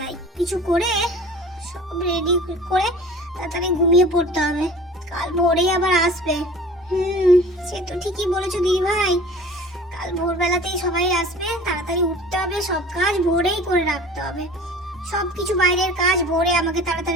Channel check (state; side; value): normal; both; correlation 0.43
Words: কিছু করে সব রেডি করে তাড়াতাড়ি ঘুমিয়ে পড়তে হবে, কাল ভোরেই আবার আসবে। সে তো ঠিকই বলেছো দিদি ভাই, কাল ভোরবেলাতেই সবাই আসবে, তাড়াতাড়ি উঠতে হবে, সব কাজ ভোরেই করে রাখতে হবে, সব কিছু বাইরের কাজ ভোরে আমাকে